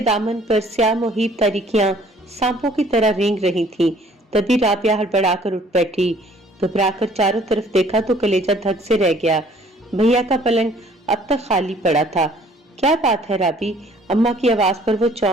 दामन पर स्याह मुहीब तारीखियां सांपों की तरह रेंग रही थीं। तभी राबिया हड़बड़ाकर उठ बैठी। घबराकर चारों तरफ देखा तो कलेजा धक से रह गया। भैया का पलंग अब तक खाली पड़ा था। क्या बात है राबी? अम्मा की आवाज पर वो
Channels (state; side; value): normal; both; correlation 0.57